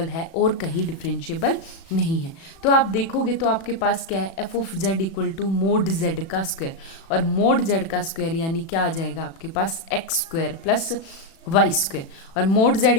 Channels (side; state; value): right; late; 36 ms